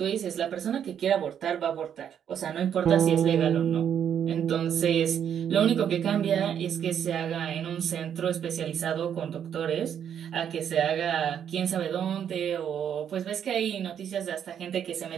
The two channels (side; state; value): left; quieter; 8.8 dB